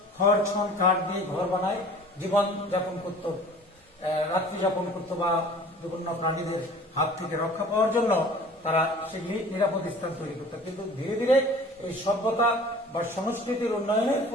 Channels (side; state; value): both; normal; correlation 0.46